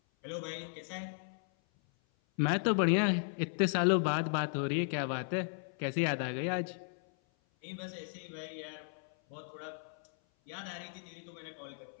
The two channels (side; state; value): right; silent; 54 dB below the other